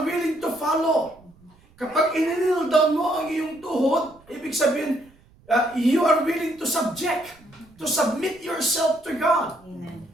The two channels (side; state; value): right; noise; rumble, 29 dB below the sound